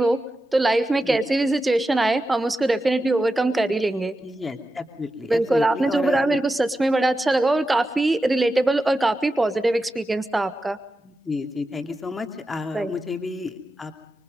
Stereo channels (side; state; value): both; normal; correlation 0.91